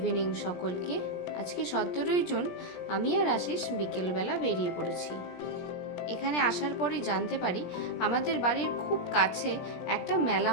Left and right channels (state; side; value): late; right; 17 ms